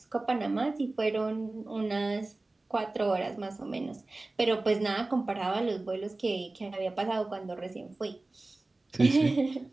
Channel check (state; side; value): quieter; left; 3.1 dB